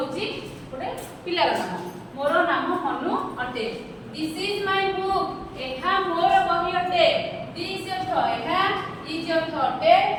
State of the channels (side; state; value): both; identical; correlation 1.00